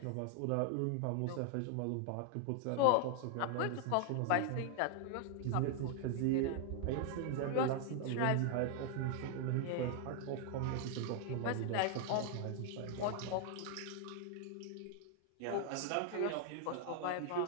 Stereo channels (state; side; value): different; both; correlation 0.00